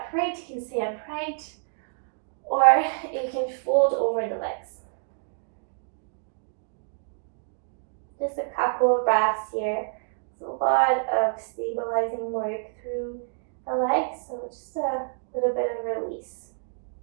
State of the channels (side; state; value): left; silent; digital silence